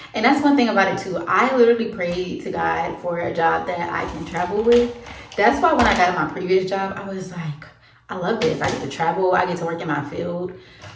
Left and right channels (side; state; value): both; identical; correlation 1.00